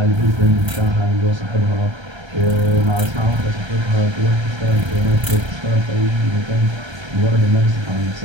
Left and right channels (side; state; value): left; late; 1.3 ms